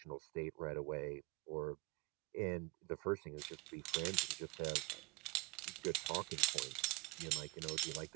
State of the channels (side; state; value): left; quieter; 27.8 dB